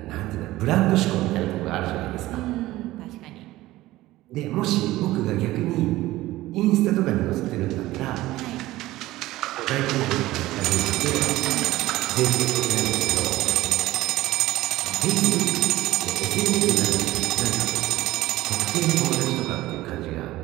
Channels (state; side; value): quieter; left; 17.0 dB